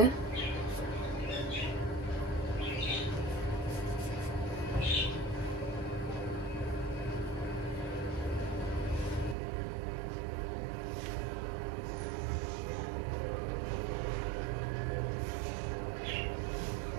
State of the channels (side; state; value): left; drops out; at 9.3 s